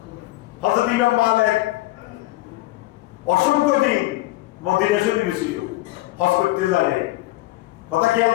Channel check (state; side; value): quieter; right; 18.4 dB